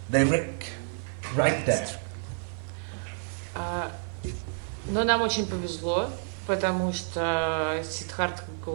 Direct, right there. Но нам очень повезло, потому что Сиддхартха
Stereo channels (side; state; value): left; silent; digital silence